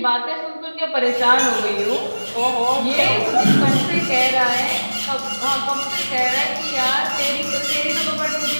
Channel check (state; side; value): inverted; both; correlation -1.00